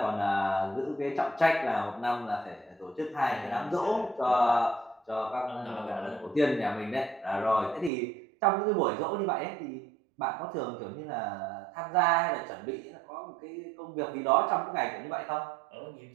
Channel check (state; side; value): drops out; left; at 7.9 s